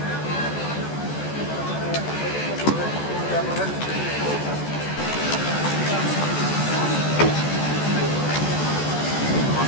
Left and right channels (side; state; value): right; late; 14 ms